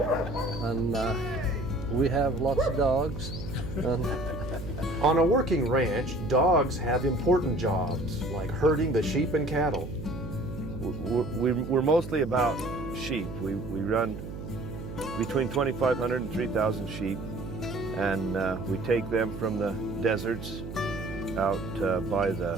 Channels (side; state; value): right; noise; hum, 9 dB below the sound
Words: And we have lots of dogs. On a working ranch, dogs have important jobs, like herding the sheep and cattle. We're mostly about sheep. We run between 2,500 and 3,000 sheep, and we take them from the deserts out by